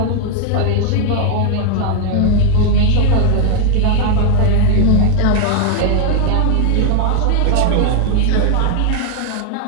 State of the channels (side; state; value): both; different; correlation 0.00